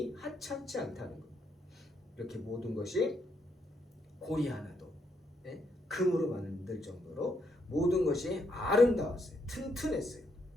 하찮지 않다는 것. 이렇게 모든 것이 고리 하나도 금으로 만들 정도로 모든 것이 아름다웠어요. 튼튼했어요.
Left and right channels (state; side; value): normal; both; correlation 0.76